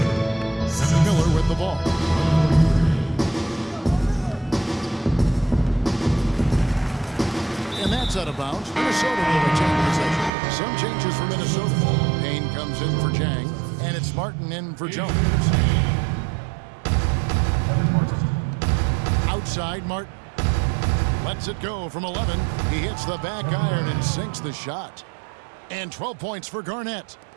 Miller with the ball. And that's out of bounds. Minnesota will retain possession. Some changes for Minnesota. Payne comes in for Jang, and it's Martin in for Jones. Outside Martin. Lets it go from 11. He hits the back iron and sinks the shot. And 12 points for Garnett.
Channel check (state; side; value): drops out; left; at 10.3 s